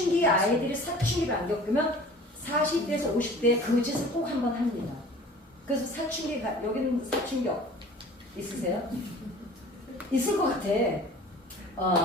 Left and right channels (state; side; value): normal; both; correlation 0.45